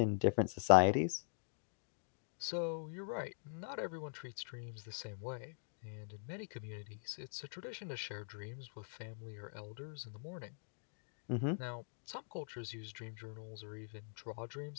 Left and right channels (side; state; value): right; silent; digital silence